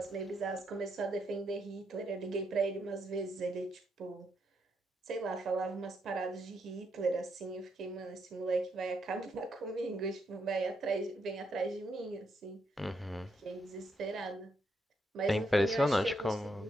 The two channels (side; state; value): both; normal; correlation 0.78